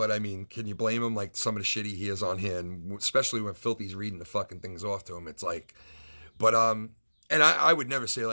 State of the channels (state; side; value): inverted; both; correlation -1.00